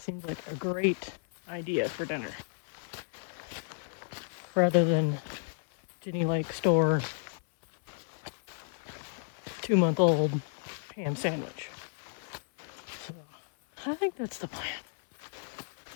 like a great idea for dinner. Rather than Ginny Lake store 2-month-old ham sandwich. So, I think that's the plan.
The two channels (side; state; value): right; silent; 56 dB below the other